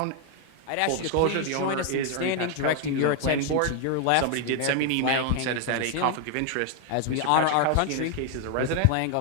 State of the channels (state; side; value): different; both; correlation 0.00